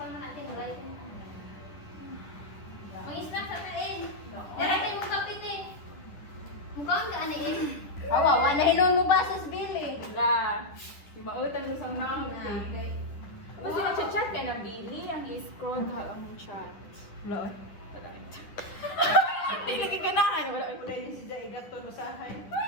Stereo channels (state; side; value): late; right; 10 ms